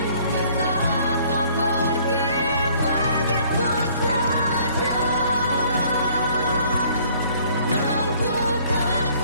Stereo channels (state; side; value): inverted; both; correlation -0.58